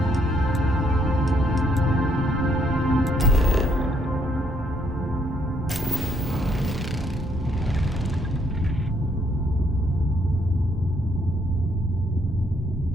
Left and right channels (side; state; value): both; normal; correlation 0.70